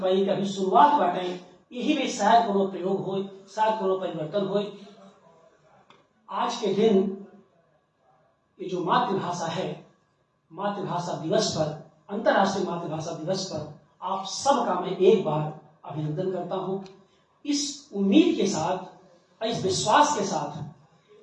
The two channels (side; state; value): both; identical; correlation 1.00